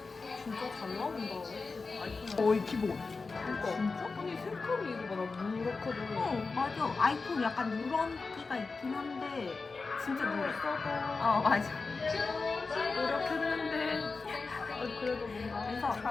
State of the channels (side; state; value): right; quieter; 4.2 dB